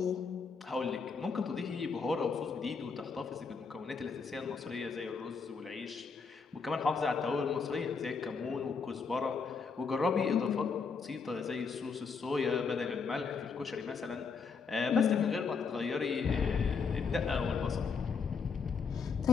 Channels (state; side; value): quieter; right; 5.3 dB